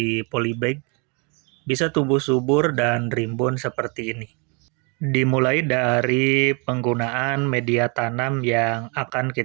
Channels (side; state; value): left; quieter; 33.4 dB